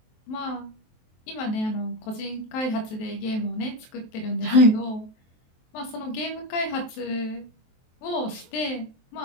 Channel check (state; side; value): late; right; 23 ms